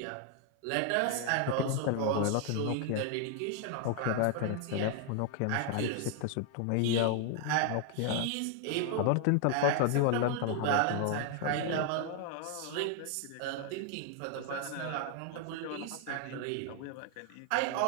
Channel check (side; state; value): both; different; correlation 0.00